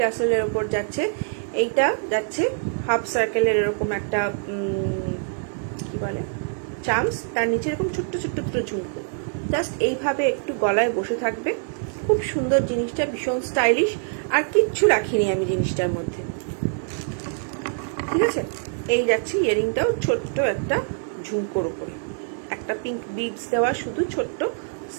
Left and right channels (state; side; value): silent; left; digital silence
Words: টাসেলের ওপর যাচ্ছে। এইটা যাচ্ছে হাফ সার্কেলের এরকম একটা কি বলে চামস, তার নিচে এরকম ছোট্ট ছোট্ট ছোট্ট ঝুমকো, জাস্ট এইভাবে একটু গলায় বসে থাকবে। খুব সুন্দর জিনিসটা, ভীষণ স্টাইলিশ, আর কিচ্ছু রাখিনি আমি জিনিসটার মধ্যে, ঠিক আছে। এই যাচ্ছে ইয়ারিংটাও ছোট্ট একটা ঝুমকোর উপরে, একটা পিঙ্ক বিডস দেওয়া, শুধু ছোট্ট